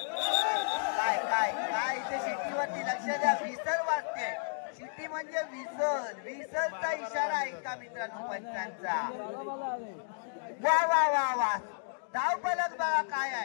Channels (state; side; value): silent; right; digital silence